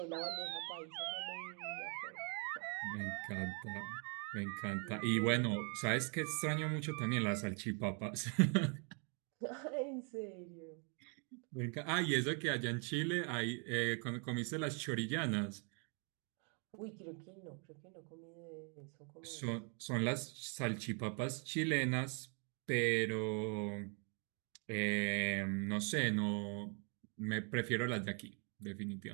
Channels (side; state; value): left; quieter; 38.3 dB